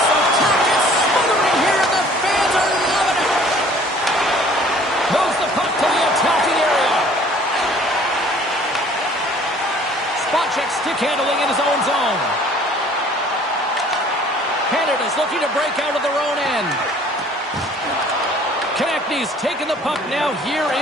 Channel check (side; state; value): both; normal; correlation 0.54